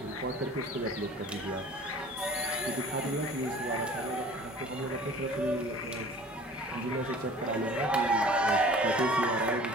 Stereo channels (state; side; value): normal; both; correlation 0.46